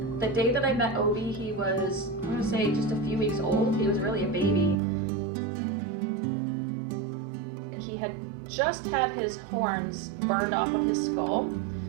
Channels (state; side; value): drops out; left; at 4.8 s